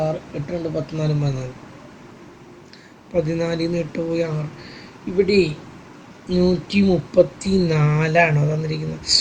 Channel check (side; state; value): both; identical; correlation 1.00